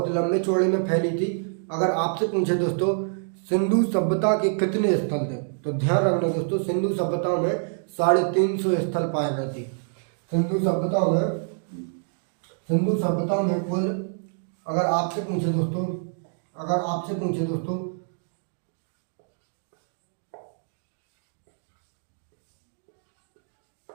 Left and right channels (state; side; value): silent; left; digital silence